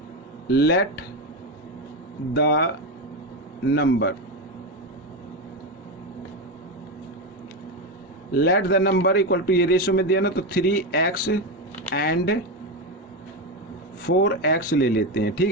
Let the number, let the number equal to, ये रेशो में दिया ना, तो 3x एंड 4x ले लेते हैं,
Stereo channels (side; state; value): both; normal; correlation 0.13